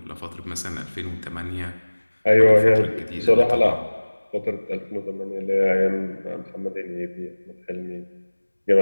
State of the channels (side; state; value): both; inverted; correlation -1.00